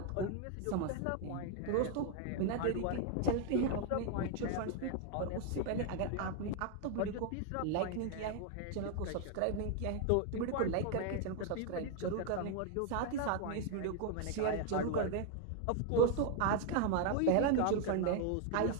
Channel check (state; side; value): different; both; correlation 0.00